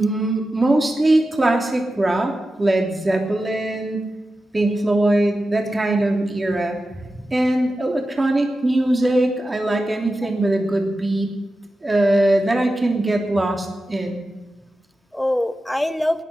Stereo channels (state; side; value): normal; both; correlation 0.92